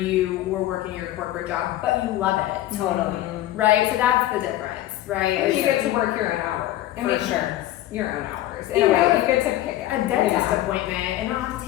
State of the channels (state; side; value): quieter; right; 14.4 dB